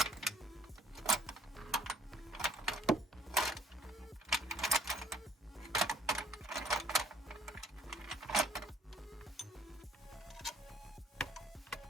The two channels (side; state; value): both; normal; correlation 0.61